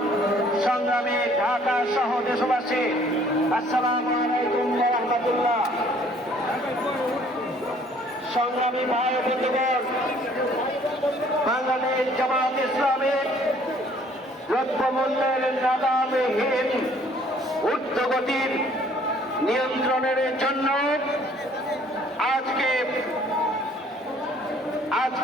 সংগ্রামী ঢাকা সহ দেশবাসী, আসসালামু আলাইকুম ওয়া রাহমাতুল্লাহ। সংগ্রামী ভাই বন্ধুগণ, বাংলাদেশ জামাত ইসলামী দ্রব্যমূল্যের নাগামহীন ঊর্ধ্বগতির নিয়ন্ত্রণের জন্য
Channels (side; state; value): both; normal; correlation 0.58